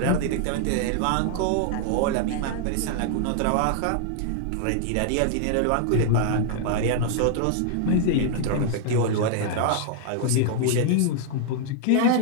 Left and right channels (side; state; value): both; different; correlation 0.00